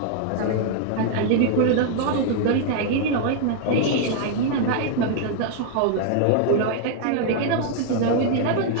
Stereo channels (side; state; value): both; different; correlation 0.00